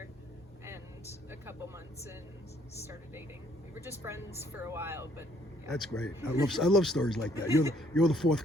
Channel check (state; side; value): normal; both; correlation 0.65